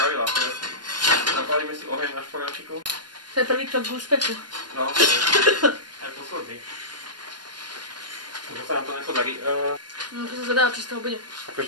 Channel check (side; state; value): left; late; 0.71 ms